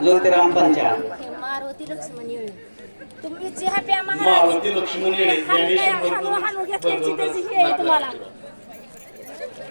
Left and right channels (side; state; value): both; inverted; correlation -1.00